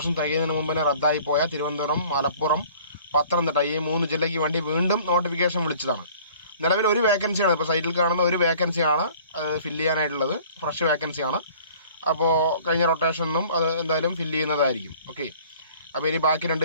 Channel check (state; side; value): inverted; both; correlation -0.51